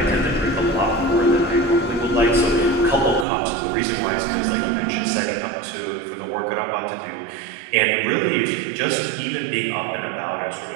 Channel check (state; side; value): drops out; left; at 3.2 s